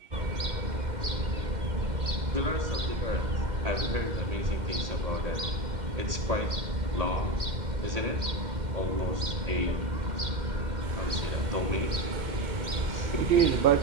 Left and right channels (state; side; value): late; left; 2.1 ms